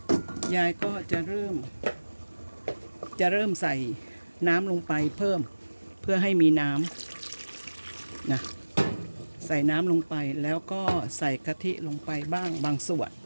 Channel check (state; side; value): inverted; both; correlation -1.00